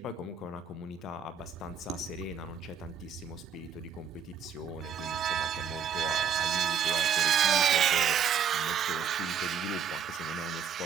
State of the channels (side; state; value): left; quieter; 7.3 dB